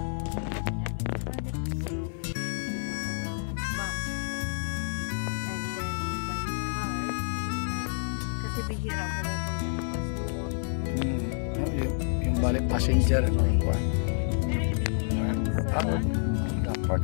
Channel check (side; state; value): right; silent; 59 dB below the other